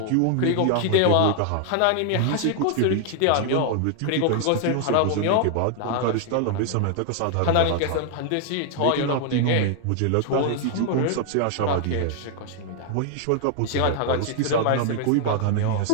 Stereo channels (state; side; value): different; both; correlation 0.00